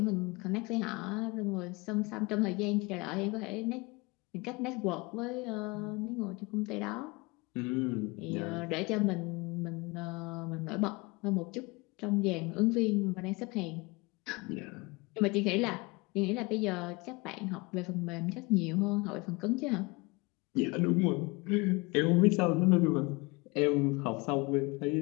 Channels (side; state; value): right; quieter; 25.9 dB